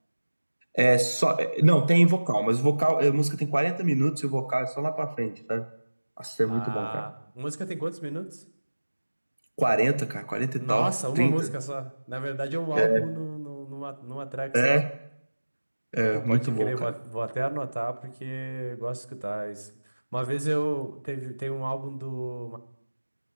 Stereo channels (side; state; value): both; inverted; correlation -1.00